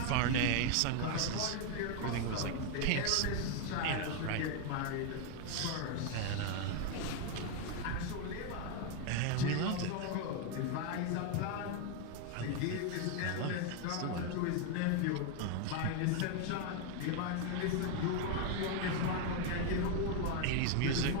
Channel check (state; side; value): different; both; correlation 0.01